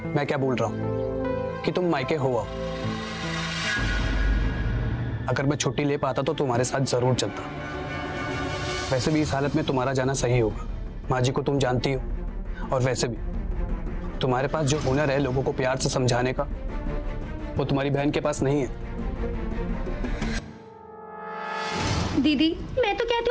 मैं क्या बोल रहा हूँ कि तुम मायके हो आओ। अगर मैं छुट्टी ले पाता तो तुम्हारे साथ जरूर चलता। वैसे भी इस हालत में तुम्हारा जाना सही होगा। माँ जी को तुम जानती हो, और वैसे भी तुम्हारे पास जो हुनर है लोगों को प्यार से समझाने का, वो तुम्हारी बहन के पास नहीं है। दीदी, मैं तो कहती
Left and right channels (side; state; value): both; identical; correlation 1.00